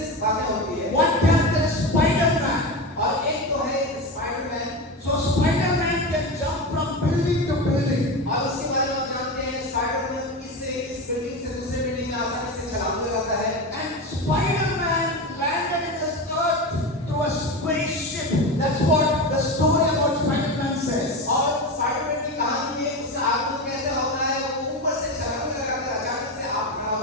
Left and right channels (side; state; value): both; normal; correlation 0.21